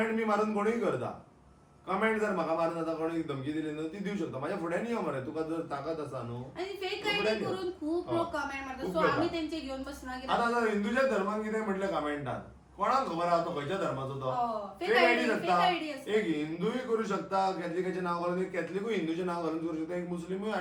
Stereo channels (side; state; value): both; identical; correlation 1.00